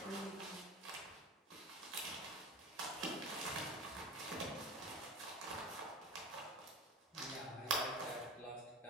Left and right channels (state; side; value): normal; both; correlation 0.32